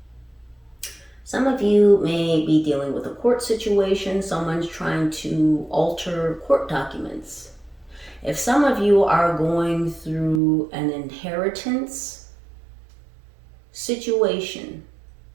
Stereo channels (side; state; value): left; drops out; at 10.4 s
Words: Some of you may be dealing with a court situation. Someone's trying to alter court documents. If some of you are going through an inheritance situation,